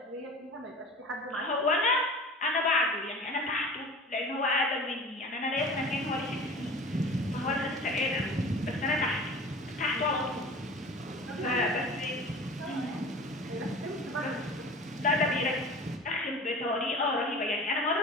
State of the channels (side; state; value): both; normal; correlation 0.39